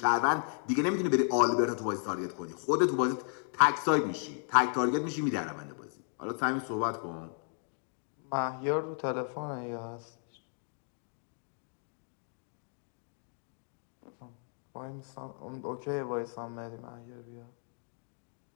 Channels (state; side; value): silent; right; 55 dB below the other